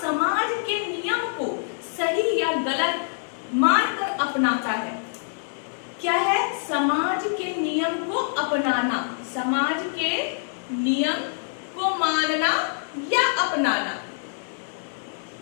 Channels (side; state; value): right; silent; 59 dB below the other